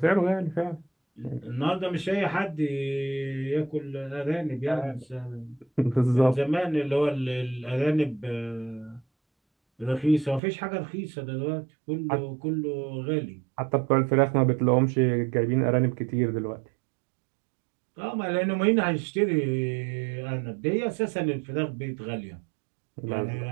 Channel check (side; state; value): left; drops out; at 10.4 s